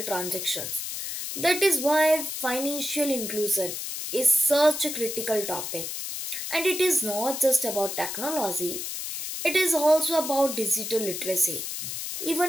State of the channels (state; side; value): noise; left; hiss, 5 dB below the sound